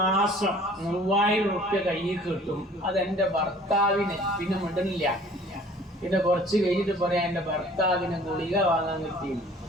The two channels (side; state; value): both; normal; correlation 0.51